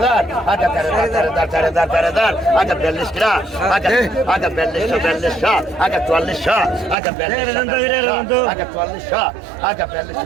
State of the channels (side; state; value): left; drops out; at 7.0 s